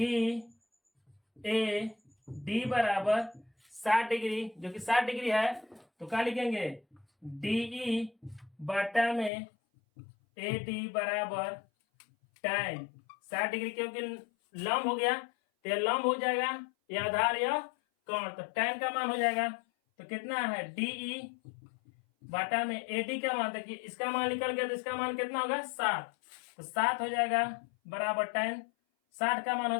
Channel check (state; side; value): drops out; right; at 9.3 s